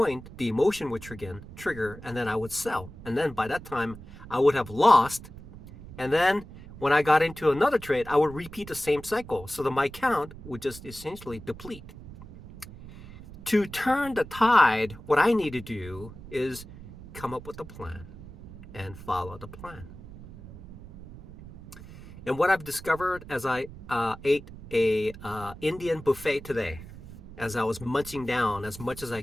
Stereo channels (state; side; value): noise; right; rumble, 16 dB below the sound